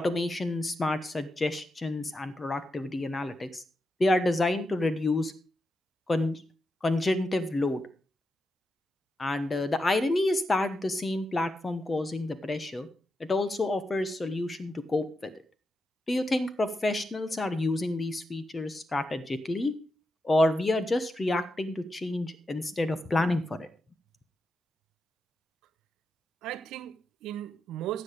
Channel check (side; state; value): both; normal; correlation 0.87